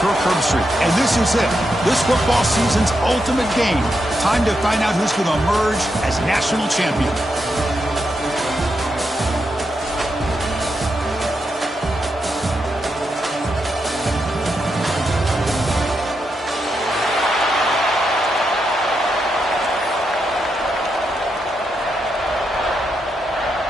Herbstreit, and this is it. This football season's ultimate game. Time to find out who's going to emerge as national champion.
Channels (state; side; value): normal; both; correlation 0.84